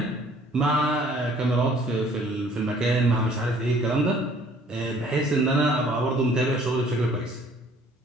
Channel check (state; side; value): normal; both; correlation 0.57